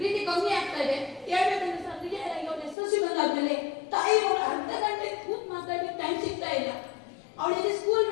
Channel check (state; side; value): drops out; right; at 2.8 s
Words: ಕಮ್ಮಿ ಆಗ್ತಾ ಇದೆ. ಹೇಳ್ಬೇಕಂದ್ರೆ ಸರ್ ನಿಜವಾಗಿ ಅವಳು SSLC ಬಂದಾದ್ಮೇಲೆ ತಾಯಿ ಅವಳು ಅರ್ಧ ಗಂಟೆ ಕೂತ್ ಮಾತಾಡ್ಲಿಕ್ಕೆ ಟೈಮ್ ಸಿಗ್ತಾ ಇಲ್ಲ. ಅವಳಿಗೆ ಸ್ಕೂಲ್